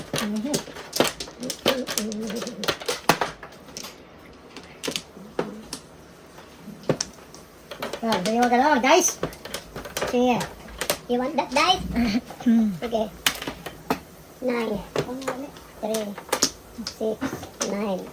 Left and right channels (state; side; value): identical; both; correlation 1.00